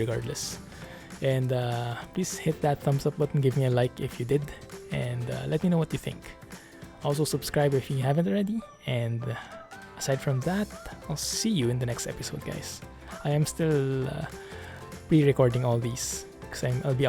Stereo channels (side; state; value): both; identical; correlation 1.00